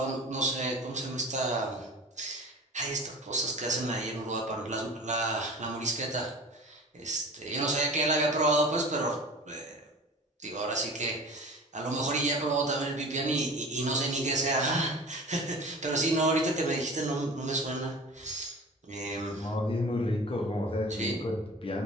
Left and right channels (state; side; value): normal; both; correlation 0.38